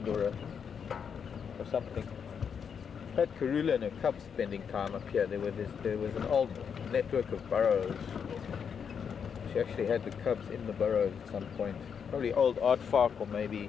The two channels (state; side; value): quieter; right; 7.0 dB